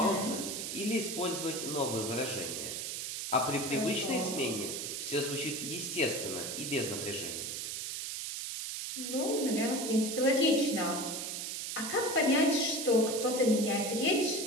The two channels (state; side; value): noise; right; hiss, 4 dB below the sound